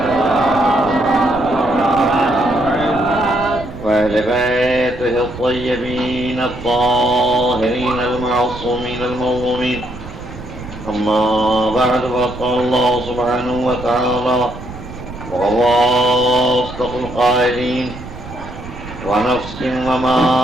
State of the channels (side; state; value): right; noise; rumble, 13 dB below the sound